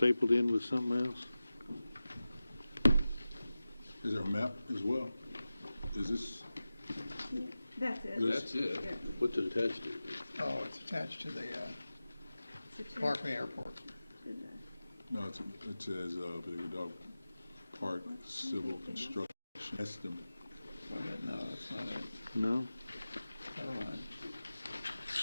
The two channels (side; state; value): both; inverted; correlation -0.95